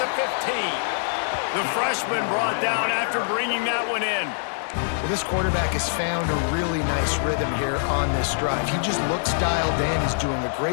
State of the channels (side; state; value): right; silent; 62 dB below the other